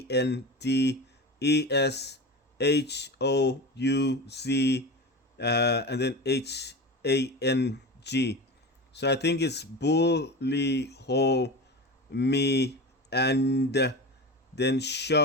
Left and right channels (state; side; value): normal; both; correlation 0.28